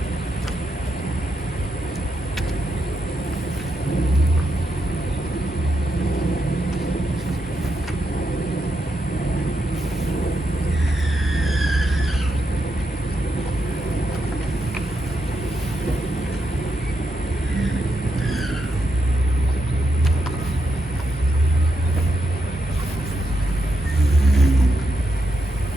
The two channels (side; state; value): both; normal; correlation 0.83